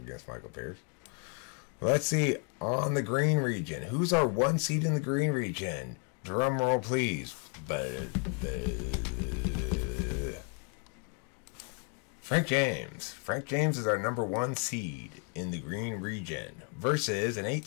against Michael Pierce. Let's see, on the green region. Who's our 1 seed in the green region? Drum roll, please. Frank James. Frank James is our number 1 seed in the green region versus an 8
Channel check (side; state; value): right; quieter; 39.4 dB